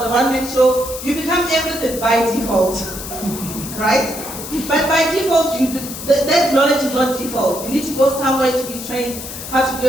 a one-man show, you become everything by default, right? But by default, that knowledge is not default. You need to go somewhere to be trained how to do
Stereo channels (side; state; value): left; noise; hiss, 10 dB below the sound